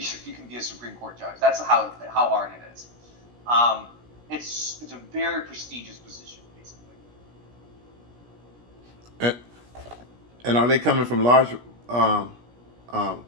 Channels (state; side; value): late; left; 17 ms